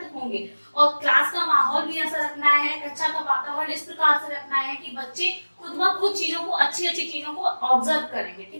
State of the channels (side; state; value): both; inverted; correlation -1.00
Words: होंगे। और क्लास का माहौल भी ऐसा रखना है, कक्षा का वातावरण इस प्रकार से रखना है कि बच्चे खुद ब खुद चीजों को, अच्छी अच्छी चीजों को ऑब्जर्व करेंगे,